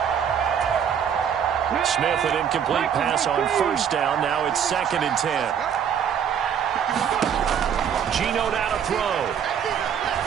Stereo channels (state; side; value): quieter; left; 8.2 dB